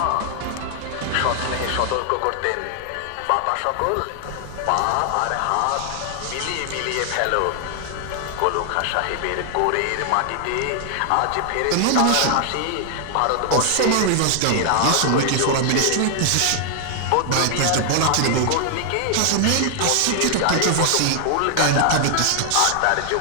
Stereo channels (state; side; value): different; both; correlation 0.00